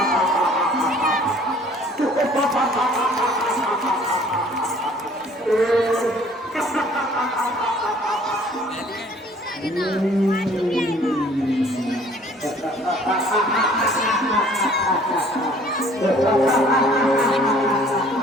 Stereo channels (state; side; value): normal; both; correlation 0.55